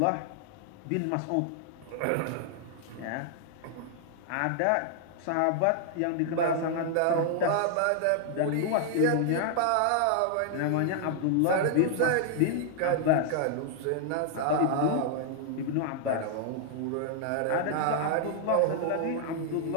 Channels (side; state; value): both; different; correlation 0.00